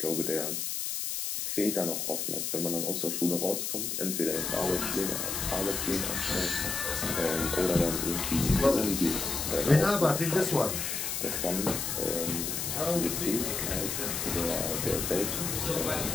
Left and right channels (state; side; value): noise; left; hiss, 2 dB below the sound